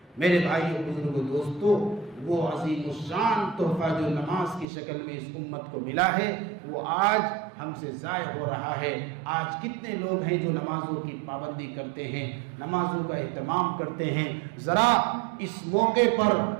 میرے بھائیو، بزرگوں، دوستو، وہ عظیم الشان تحفہ جو نماز کی شکل میں اس امت کو ملا ہے وہ آج ہم سے ضائع ہو رہا ہے۔ آج کتنے لوگ ہیں جو نمازوں کی پابندی کرتے ہیں، نمازوں کا اہتمام کرتے ہیں۔ ذرا اس موقع پر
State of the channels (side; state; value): left; drops out; at 4.7 s